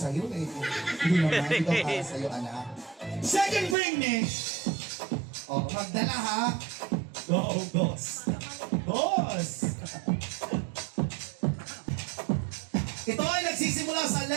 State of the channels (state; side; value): drops out; left; at 3.8 s